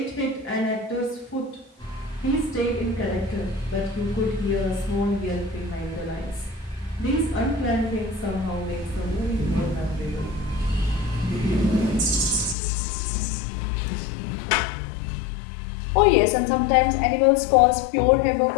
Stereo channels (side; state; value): right; drops out; at 12.6 s